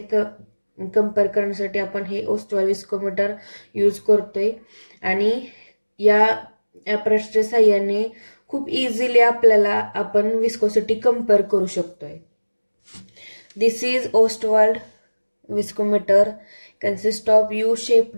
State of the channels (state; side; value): inverted; both; correlation -1.00